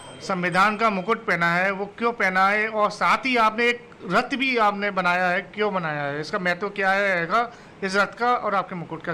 संविधान का मुकुट पहना है, वो क्यों पहना है? और साथ ही आपने एक रथ भी आपने बनाया है, क्यों बनाया है? इसका महत्व क्या है इस रथ का और आपके मुकुट का?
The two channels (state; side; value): identical; both; correlation 1.00